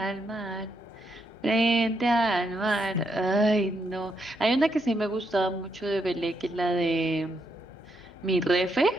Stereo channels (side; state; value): both; normal; correlation 0.79